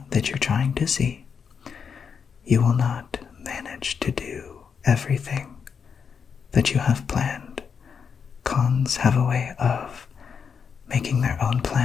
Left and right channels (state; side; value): quieter; right; 6.5 dB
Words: that you're trying to see. You will not manage to do everything that you have planned. Cons have a way of making their own